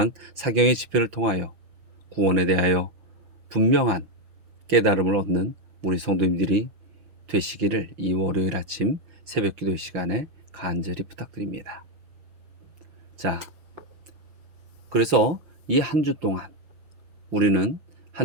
사경의 집회를 통하여 구원에 대하여 분명한 깨달음을 얻는 우리 성도님들이 되시기를 이 월요일 아침 새벽기도 시간에 간절히 부탁드립니다. 자, 그래서 이 한 주 동안 우리는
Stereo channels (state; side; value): late; left; 5.7 ms